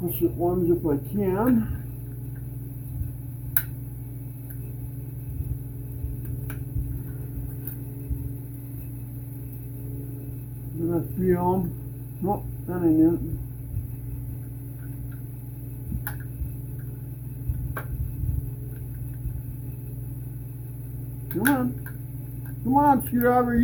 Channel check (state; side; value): identical; both; correlation 1.00